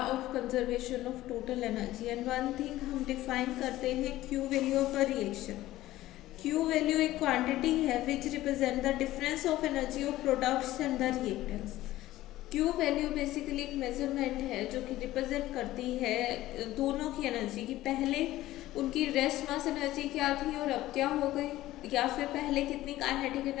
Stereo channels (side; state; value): right; quieter; 15.7 dB